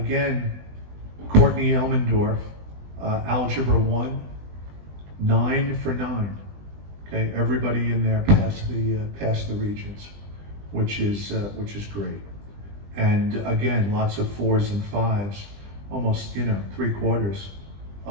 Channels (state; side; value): late; left; 20 ms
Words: Courtney Elmendorf, Algebra 1, 9 for 9. Okay, everybody in there passed the Regents, which is great. And again, lots of 4s and 5s. Almost, you know, 3/4